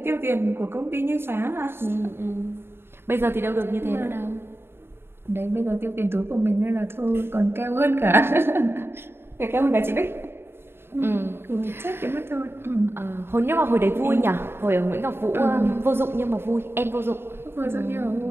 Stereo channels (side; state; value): left; late; 0.11 ms